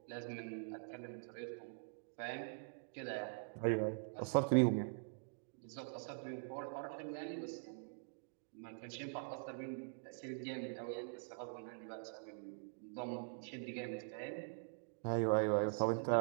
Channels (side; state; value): left; silent; digital silence